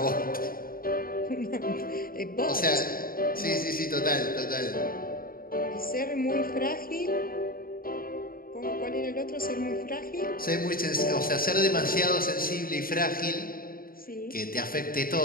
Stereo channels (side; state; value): right; late; 0.42 ms